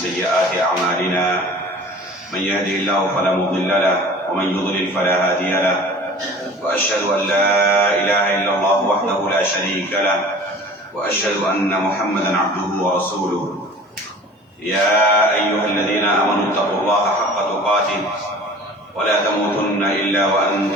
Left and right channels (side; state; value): both; normal; correlation 0.43